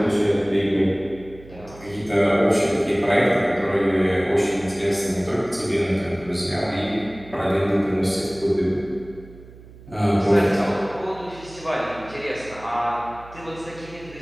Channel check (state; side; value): noise; right; hum, 20 dB below the sound